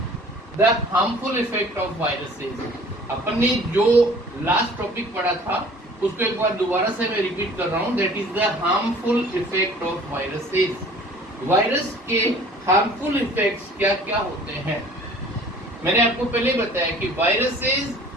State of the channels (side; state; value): both; normal; correlation 0.50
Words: the harmful effect of viruses. अपन ने जो last topic पढ़ा था उसको एक बार दोबारा से मैं repeat कर रहा हूँ. That is the harmful effect of viruses. Virus के हार्मफुल इफेक्ट्स क्या क्या होते हैं. मैंने आपको पहले बताया कि viruses